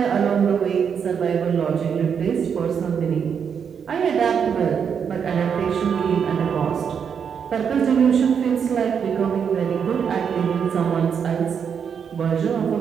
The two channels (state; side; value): quieter; left; 7.1 dB